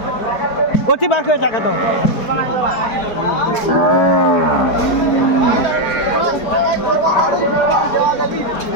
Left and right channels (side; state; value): right; late; 4.6 ms